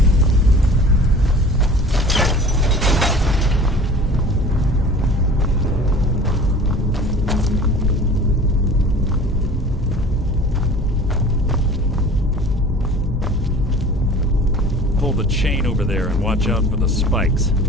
Pull the chain over there and watch out for the spikes.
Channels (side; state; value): both; normal; correlation 0.43